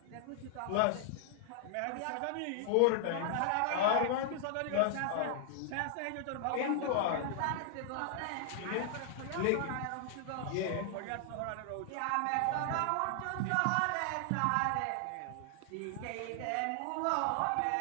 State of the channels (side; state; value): both; different; correlation 0.00